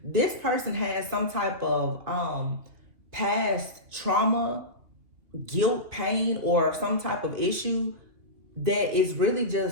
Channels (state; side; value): late; left; 2.5 ms